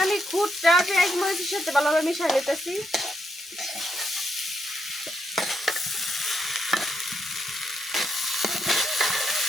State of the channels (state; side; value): normal; both; correlation 0.79